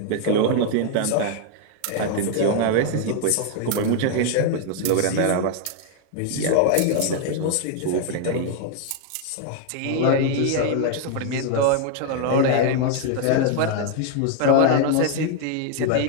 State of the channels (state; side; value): different; both; correlation 0.00